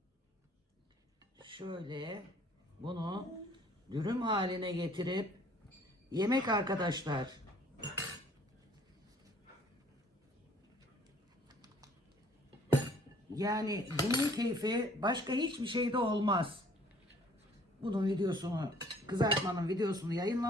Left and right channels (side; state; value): both; normal; correlation 0.57